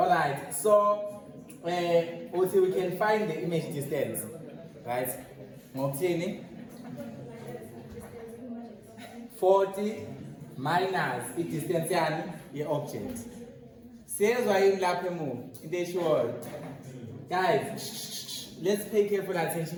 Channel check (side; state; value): both; identical; correlation 1.00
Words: so also we can find the image distance, right? Ngokthini? 40 minus i-distance yani ye-object. Siyezwa yini lapha emuva into eshiwoyo? Guys, let's pay careful